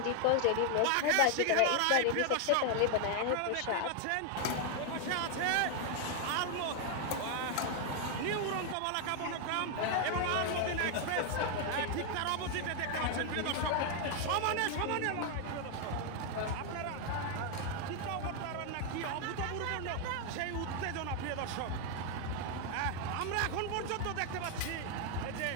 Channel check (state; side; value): different; both; correlation 0.00